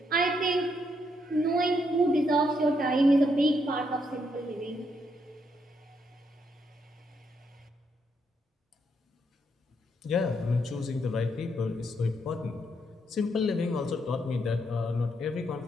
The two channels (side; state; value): both; normal; correlation 0.77